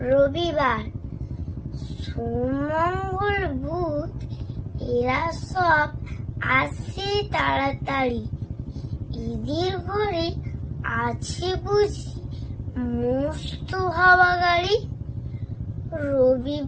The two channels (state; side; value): identical; both; correlation 1.00